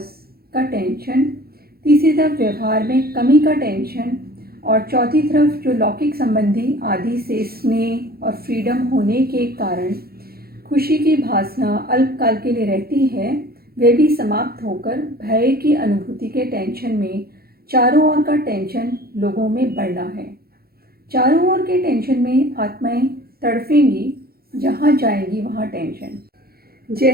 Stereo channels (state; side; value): late; left; 0.44 ms